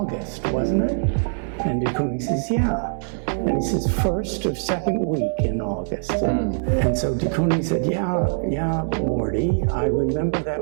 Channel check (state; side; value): silent; left; 64 dB below the other